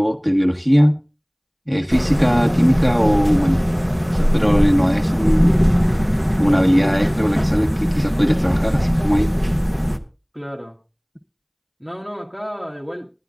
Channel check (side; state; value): both; identical; correlation 1.00